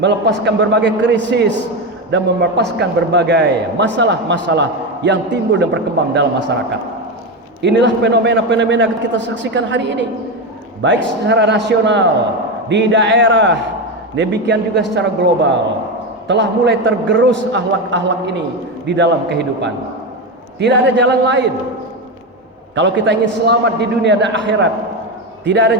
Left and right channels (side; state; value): both; normal; correlation 0.15